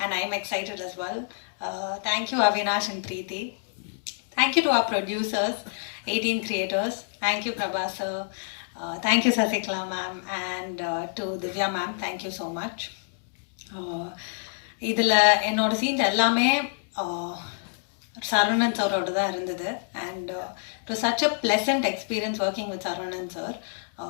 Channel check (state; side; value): silent; right; digital silence